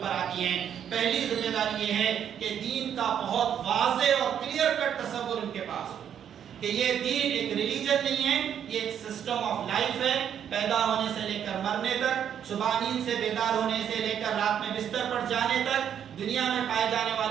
پر آتی ہیں۔ پہلی ذمہ داری یہ ہے کہ دین کا بہت واضح اور کلیئر کٹ تصور ان کے پاس ہو کہ یہ دین ایک ریلیجن نہیں ہے، یہ ایک سسٹم آف لائف ہے۔ پیدا ہونے سے لے کر مرنے تک، صبح نیند سے بیدار ہونے سے لے کر رات میں بستر پر جانے تک، دنیا میں پائے جانے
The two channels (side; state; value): left; quieter; 9.0 dB